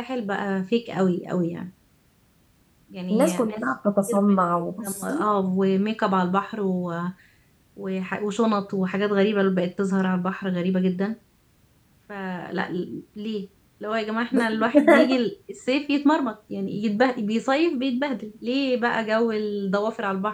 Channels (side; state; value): both; identical; correlation 1.00